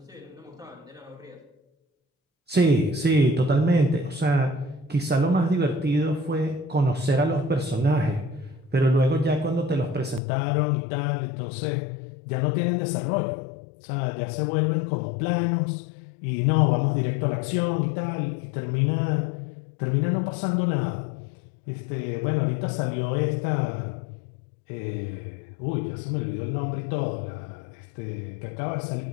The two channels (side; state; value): right; drops out; at 10.2 s